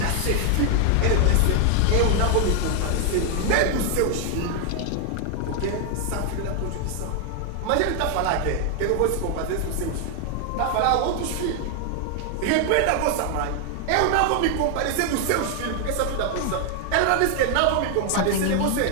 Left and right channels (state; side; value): different; both; correlation 0.00